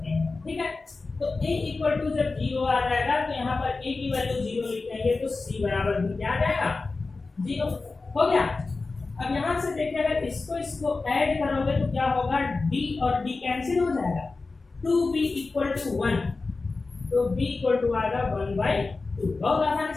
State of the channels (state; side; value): quieter; right; 3.8 dB